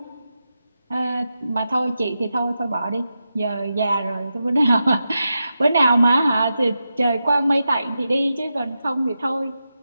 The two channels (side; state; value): both; inverted; correlation -0.89